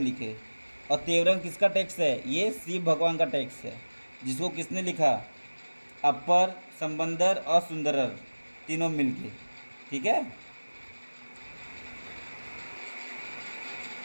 और तेवरम किसका टेक्स्ट है? ये शिव भगवान का टेक्स्ट है, जिसको किसने लिखा? अपर, संबंदर और सुंदरर तीनों मिलके, ठीक है।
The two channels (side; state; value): both; inverted; correlation -1.00